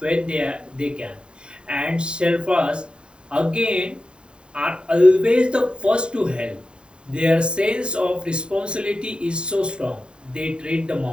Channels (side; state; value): left; late; 0.051 ms